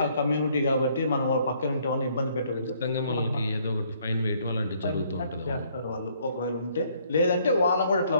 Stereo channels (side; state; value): both; inverted; correlation -0.65